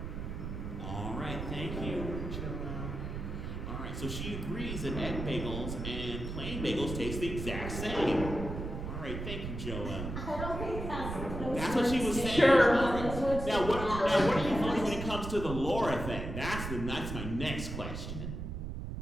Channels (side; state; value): right; noise; rumble, 6 dB below the sound